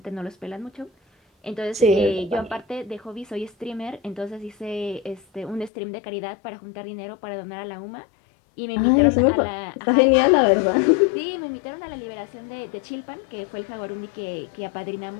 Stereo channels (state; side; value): drops out; right; at 5.7 s